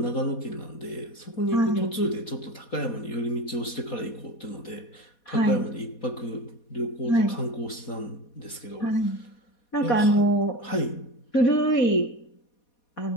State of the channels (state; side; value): late; right; 4.2 ms